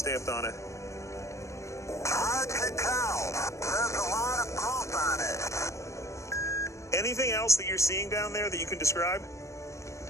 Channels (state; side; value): late; right; 0.15 ms